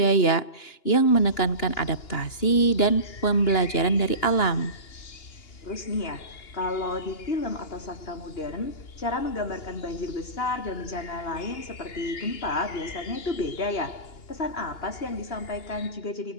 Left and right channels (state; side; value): late; right; 2.9 ms